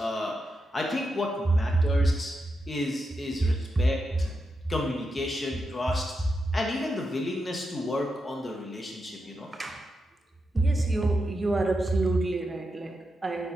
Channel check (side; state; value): both; normal; correlation 0.86